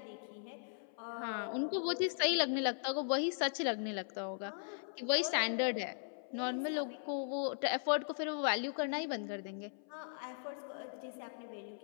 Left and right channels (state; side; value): silent; right; 52 dB below the other